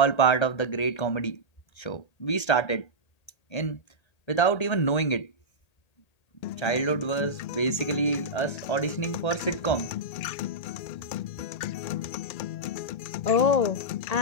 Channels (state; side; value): late; right; 1.8 ms